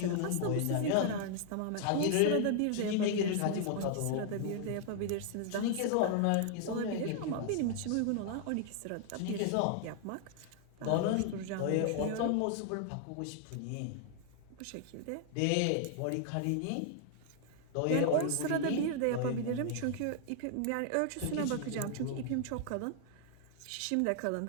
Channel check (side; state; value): both; different; correlation -0.01